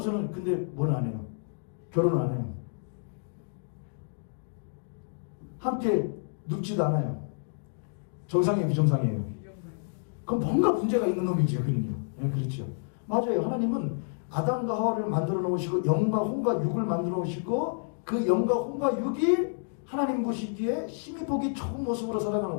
근데 뭘 안 해요? 결혼을 안 해요. 함께 눕지도 않아요. 정상이에요, 비정상이에요? 그럼 뭔가 문제가 있는 놈이죠, 그는요. 네, 그렇죠. 맞아요. 하나님은 아담과 하와를 만들어 놓으시고 영과 혼과 육을 만들어 놓으시고 그 영과 혼과 육이 하나님 보시기에 힘이 보기 좋은 모습으로 살아가는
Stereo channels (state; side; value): silent; right; digital silence